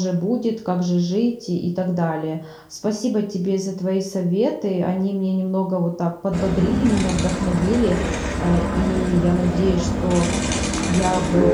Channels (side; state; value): both; identical; correlation 1.00